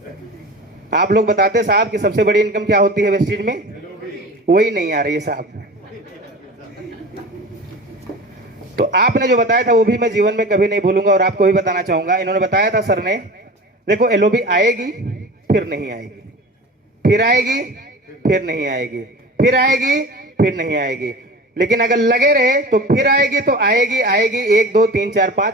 आप लोग बताते साहब कि सबसे बड़ी इनकम क्या होती है वेस्टेज में? वही नहीं आ रही है साहब। तो आपने जो बताया था वो भी मैं जीवन में कभी नहीं भूलूंगा और आपको भी बताना चाहूंगा। इन्होंने बताया था सर ने, देखो एलओबी आएगी फिर नहीं आएगी, फिर आएगी फिर नहीं आएगी, फिर आएगी फिर नहीं आएगी, लेकिन अगर लगे रहे तो फिर आएगी तो आएगी आएगी, 1 2 3 4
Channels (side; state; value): both; normal; correlation 0.35